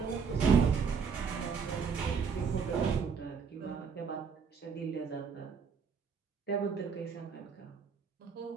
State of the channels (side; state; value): left; quieter; 5.9 dB